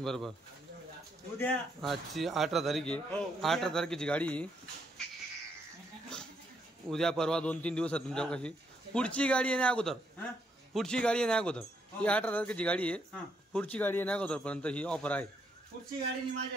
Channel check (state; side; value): normal; both; correlation 0.75